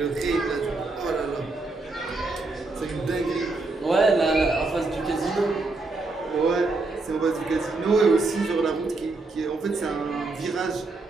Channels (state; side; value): quieter; left; 3.4 dB